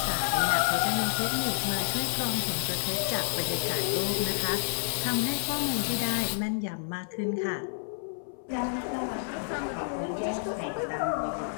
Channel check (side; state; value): right; silent; 58 dB below the other